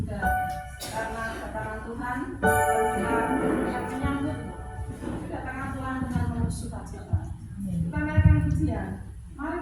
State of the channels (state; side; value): identical; both; correlation 1.00